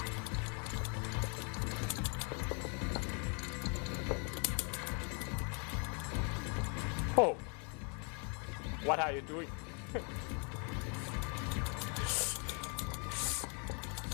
Oh. What are you doing?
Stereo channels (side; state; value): right; quieter; 36.9 dB